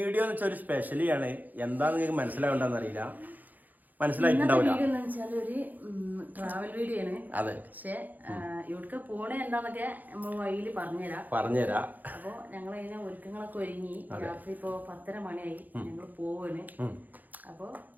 എന്ന് വെച്ചാൽ ഒരു സ്പെഷ്യലി ആണ്. എന്താന്ന് നിങ്ങൾക്ക് മനസ്സിലാവണ്ടെന്ന് അറിയില്ല, മനസ്സിലായിട്ടുണ്ടാവില്ല. ഒരു ട്രാവൽ വീഡിയോ ആണ്. അതെ, പക്ഷെ ഇവിടേക്ക് പോണേ എന്താന്നൊക്കെ നമ്മൾ വഴിയിൽ പറഞ്ഞുതരാ. അപ്പൊ ഞങ്ങൾ അതിനെ ഒരുക്കങ്ങളൊക്കെ ഒരുങ്ങി. രാത്രി ഇപ്പൊ 10:30 മണിയായി. ഞങ്ങൾ പോവാണ്. അപ്പൊ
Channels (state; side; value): late; left; 0.083 ms